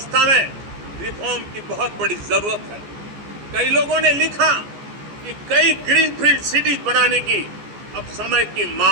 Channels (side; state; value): left; late; 14 ms